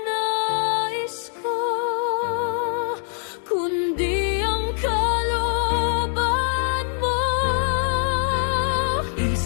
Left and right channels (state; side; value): silent; right; 61 dB below the other